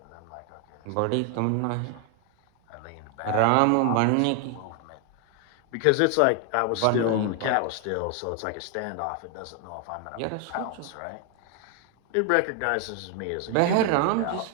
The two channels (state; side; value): different; both; correlation 0.00